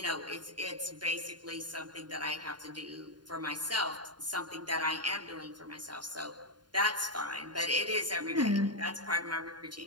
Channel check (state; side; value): late; left; 0.71 ms